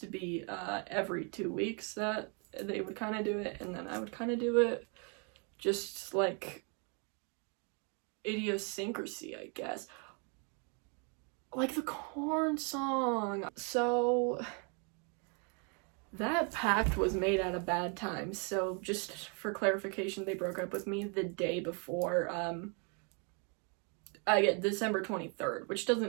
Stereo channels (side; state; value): left; quieter; 36.7 dB